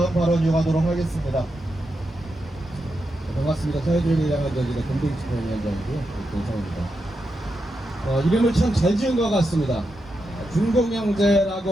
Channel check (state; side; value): normal; both; correlation 0.86